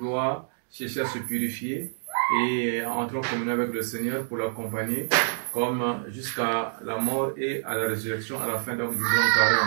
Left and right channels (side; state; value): left; silent; digital silence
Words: chercher à se purifier et entrer en communion avec le Seigneur pour l'accompagner, comme jusqu'à la mort et à la résurrection à la fin donc, du grand